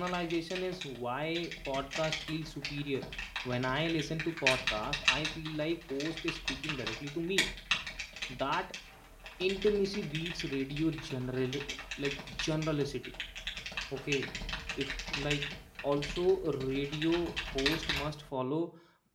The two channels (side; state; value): both; identical; correlation 1.00